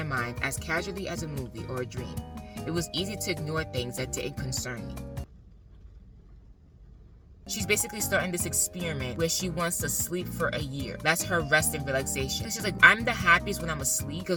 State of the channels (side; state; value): both; identical; correlation 1.00